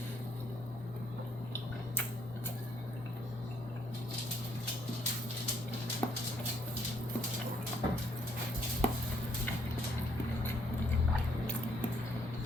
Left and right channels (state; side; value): normal; both; correlation 0.69